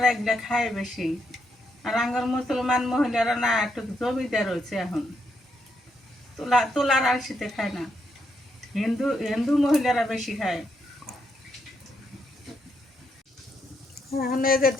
এগুলো খায় বেশি, আর আঙ্গর মুসলমান মহিলারা না, একটু জমিদার হয়েছে এখন, তোলার আলসিতে খায় না। হিন্দু মহিলারা বেশি খায়। এখন এই যে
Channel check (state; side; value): normal; both; correlation 0.79